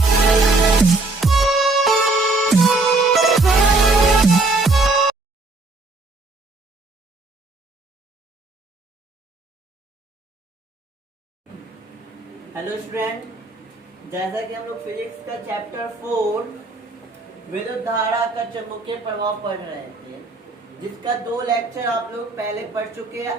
student, जैसा कि हम लोग फिजिक्स का चैप्टर 4 विद्युत धारा का चुंबकीय प्रभाव पढ़ रहे थे, जिसका 2 लेक्चर आप लोग पहले पढ़ चुके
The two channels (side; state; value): left; quieter; 3.3 dB